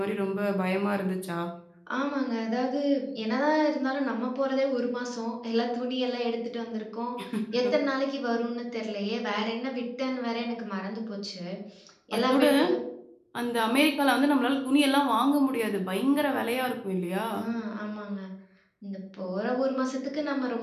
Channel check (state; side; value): identical; both; correlation 1.00